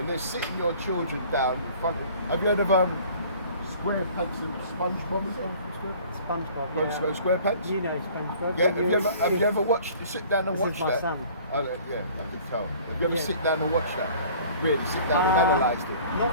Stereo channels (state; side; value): inverted; both; correlation -0.49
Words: they're sitting your children down in front of... Have you heard of SquarePants and SpongeBob? Is that SpongeBob. from Yeah. SquarePants? You know SpongeBob. Yeah, when you're have you ever watched, sit down and This watch is my that? son. Yeah, I can tell. Have you ever Yeah. sit down and watched that? Really, sit down and analysed it?